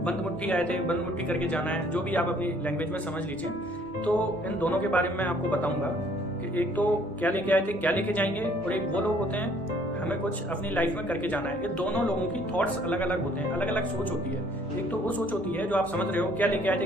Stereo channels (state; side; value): normal; both; correlation 0.60